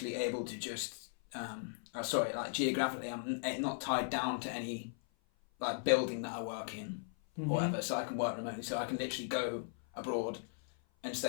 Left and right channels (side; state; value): right; silent; 53 dB below the other